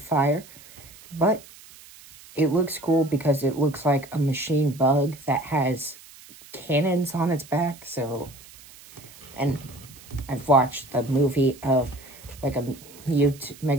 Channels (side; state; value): right; noise; hiss, 21 dB below the sound